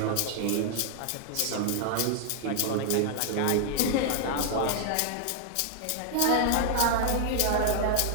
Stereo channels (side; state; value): both; different; correlation 0.00